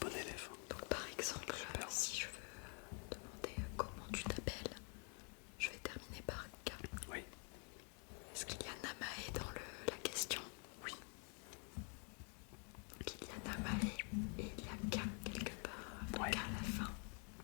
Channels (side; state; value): right; quieter; 39.2 dB